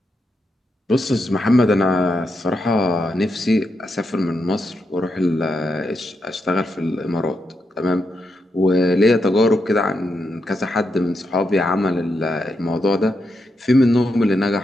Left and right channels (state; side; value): normal; both; correlation 0.84